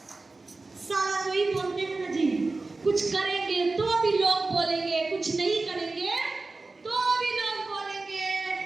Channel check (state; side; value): quieter; left; 3.5 dB